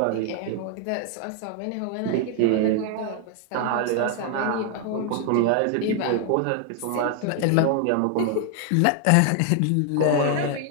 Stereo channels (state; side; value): different; both; correlation 0.00